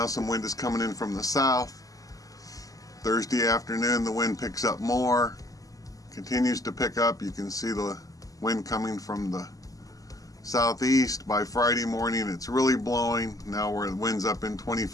some wind is coming in from the south. Thursday afternoon, the wind picks up more, continues to pick up. You can see the wind coming from the southeast. By Friday morning, it's really blowing. Now where the wind's up in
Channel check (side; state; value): right; late; 0.17 ms